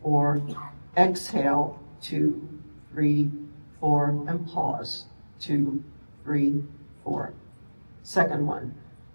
4. Exhale, 2, 3, 4. And pause, 2, 3, 4. Second one.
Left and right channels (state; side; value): inverted; both; correlation -1.00